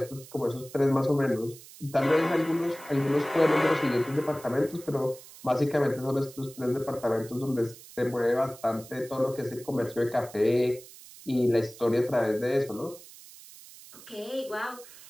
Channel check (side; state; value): right; noise; hiss, 19 dB below the sound